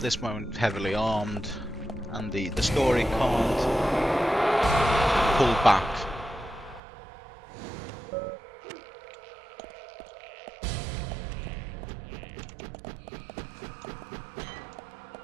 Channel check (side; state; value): left; drops out; at 6.8 s